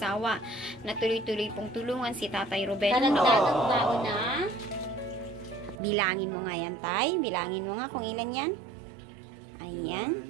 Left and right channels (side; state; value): left; drops out; at 5.8 s